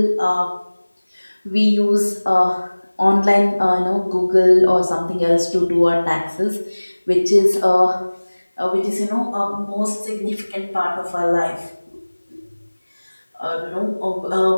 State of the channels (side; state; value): both; inverted; correlation -1.00